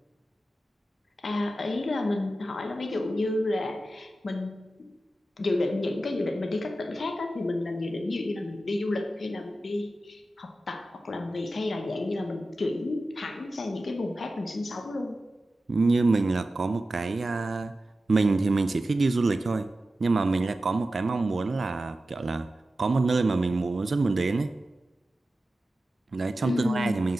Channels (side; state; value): both; normal; correlation 0.94